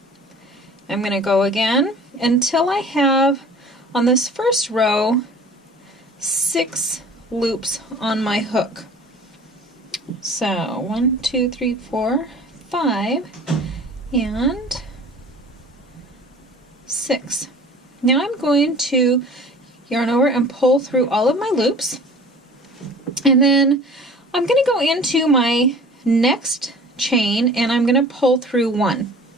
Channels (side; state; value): both; normal; correlation 0.45